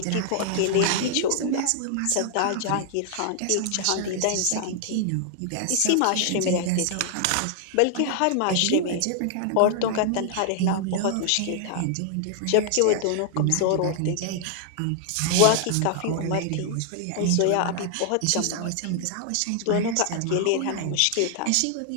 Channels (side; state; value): both; different; correlation 0.00